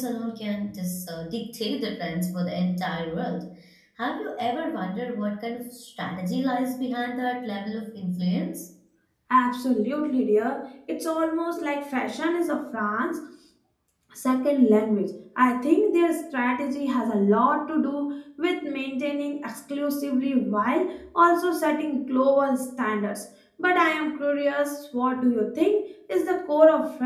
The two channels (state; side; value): identical; both; correlation 1.00